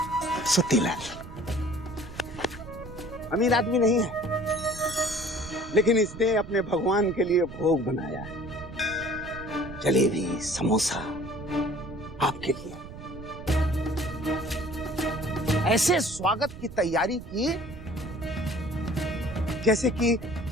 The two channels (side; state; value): right; noise; rumble, 14 dB below the sound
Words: सुत्तीलाल अमीर आदमी नहीं है, लेकिन इसने अपने भगवान के लिए भोग बनाया है। जलेबी, समोसा आपके लिए। ऐसे स्वागत की तैयारी की जैसे कि